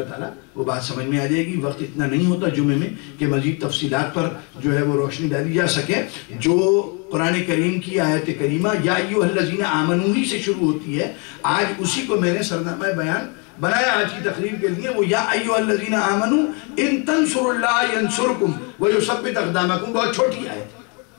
تعالیٰ وہ بات سمجھ میں آ جائے گی۔ وقت اتنا نہیں ہوتا جمعے میں کہ مزید تفصیلات پر جو ہے وہ روشنی ڈالی جا سکے۔ جو قرآن کریم کی آیت کریمہ یا ایھا الذین آمنوا ہی سے شروع ہوتی ہے، آج اسی کو میں نے سرنامہ بیان بنایا آج کی تقریر کے لیے، وہ یا ایھا الذین آمنوا ان تنصروا اللہ ینصرکم ویثبت اقدامکم، بہت چھوٹی آیت ہے۔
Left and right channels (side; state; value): right; quieter; 33.4 dB